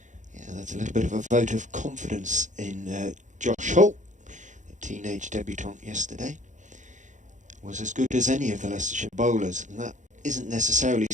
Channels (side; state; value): left; late; 0.36 ms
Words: Yeah, that's a little bit of a vote of confidence in Josh Hull. The teenage debutant yesterday was as good as any of the Leicestershire bowlers, and that isn't necessarily